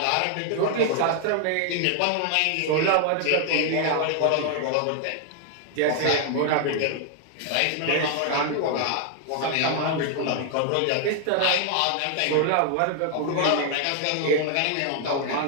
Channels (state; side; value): different; both; correlation 0.00